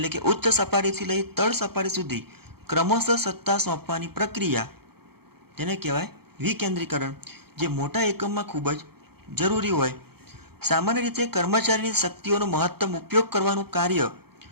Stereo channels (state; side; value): late; left; 0.96 ms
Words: કે ઉચ્ચ સપાટીથી લઈ તળ સપાટી સુધી ક્રમશઃ સત્તા સોંપવાની પ્રક્રિયા, જેને કહેવાય વિકેન્દ્રીકરણ, જે મોટા એકમમાં ખૂબ જ જરૂરી હોય. સામાન્ય રીતે કર્મચારીની શક્તિઓનો મહત્તમ ઉપયોગ કરવાનું કાર્ય